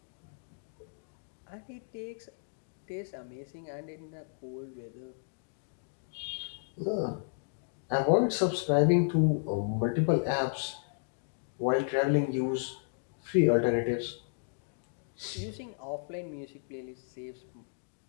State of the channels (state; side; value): silent; right; digital silence